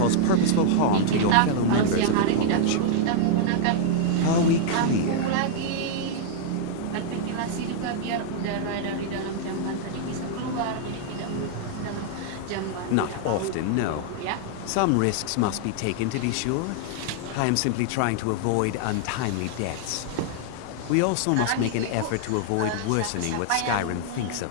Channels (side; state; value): both; different; correlation -0.01